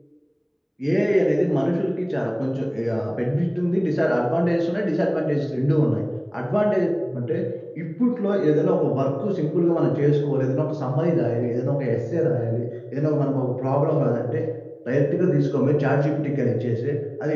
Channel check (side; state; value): both; identical; correlation 1.00